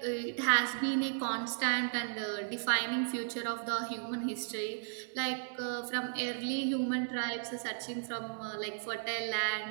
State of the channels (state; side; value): silent; left; digital silence